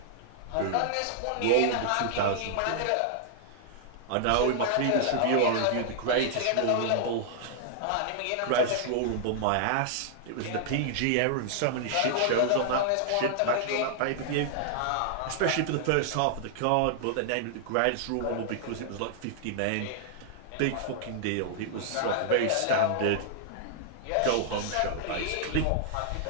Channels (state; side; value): different; both; correlation -0.01